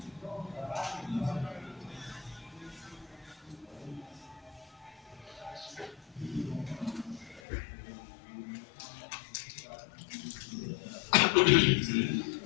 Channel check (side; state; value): right; drops out; at 7.4 s